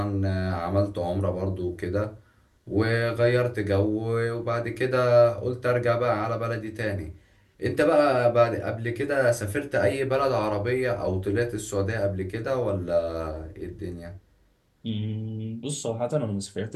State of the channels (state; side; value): identical; both; correlation 1.00